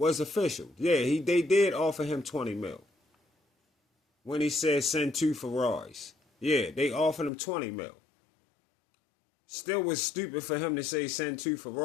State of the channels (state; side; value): drops out; right; at 7.3 s